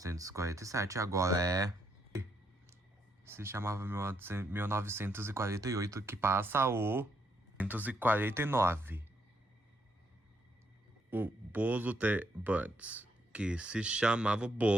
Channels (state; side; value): normal; both; correlation 0.75